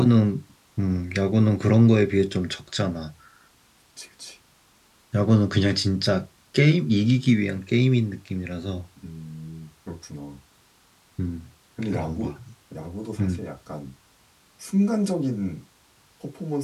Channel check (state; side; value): identical; both; correlation 1.00